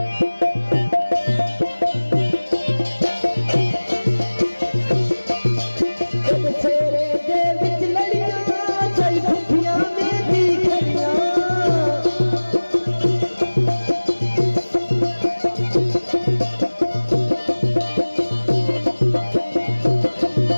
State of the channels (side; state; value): both; inverted; correlation -1.00